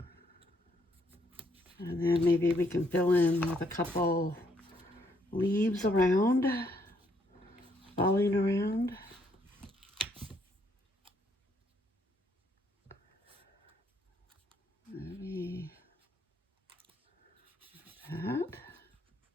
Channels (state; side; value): normal; both; correlation 0.71